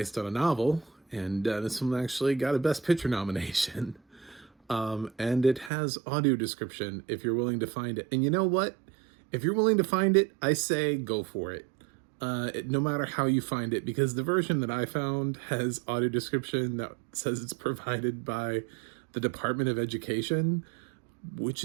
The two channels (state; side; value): drops out; left; at 5.7 s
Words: on a novel, and this one actually got a Best Picture nomination. And it has audio description if you're willing to find it. And you know what? If you're willing to find it, I say go for it. No matter how you find it, because the version that I found has audio description that says it's provided by the Department of Education, which